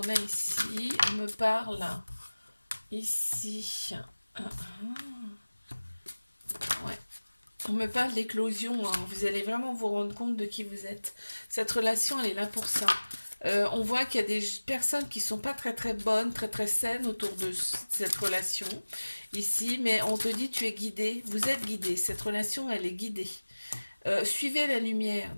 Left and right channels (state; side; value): inverted; both; correlation -1.00